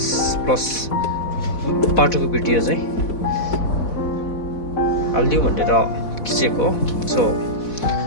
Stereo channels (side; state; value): right; late; 4.1 ms